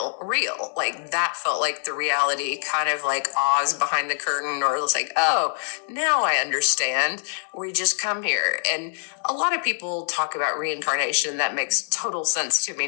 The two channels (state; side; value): silent; right; digital silence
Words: real. Like that felt like the reality, kind of like Oz behind the curtain, or it was like, oh, now I understand. We just come here. And a lot of people talk about reincarnation. That makes total sense to me